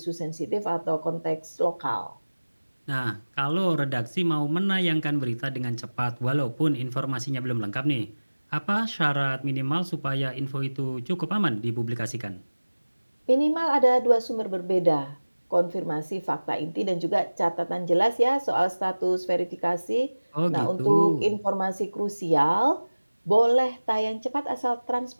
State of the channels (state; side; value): inverted; both; correlation -1.00